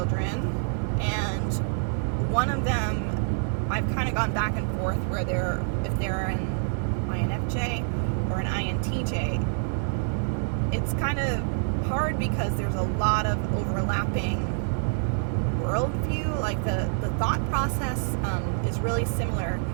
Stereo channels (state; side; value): silent; left; digital silence